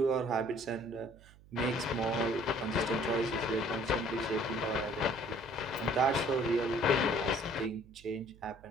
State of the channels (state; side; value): noise; right; hum, 24 dB below the sound